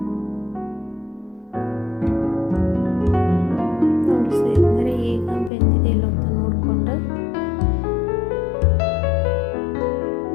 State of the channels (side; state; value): right; drops out; at 5.5 s